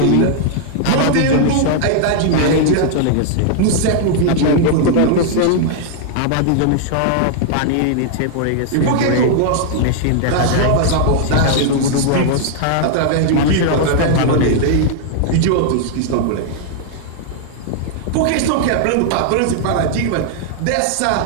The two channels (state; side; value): different; both; correlation -0.01